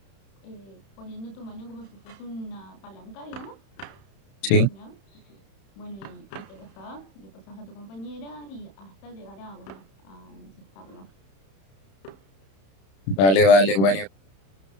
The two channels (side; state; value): right; late; 31 ms